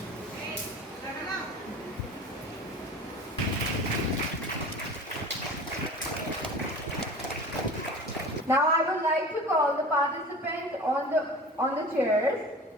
Now I would like to call the participants on the chairs.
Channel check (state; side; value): normal; both; correlation 0.37